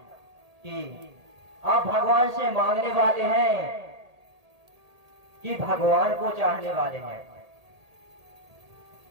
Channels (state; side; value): late; left; 1.8 ms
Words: कि आप भगवान से मांगने वाले हैं कि भगवान को चाहने वाले हैं।